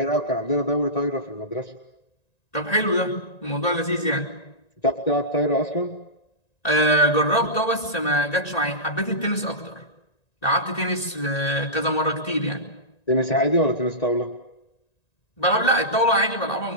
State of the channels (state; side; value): late; right; 1.9 ms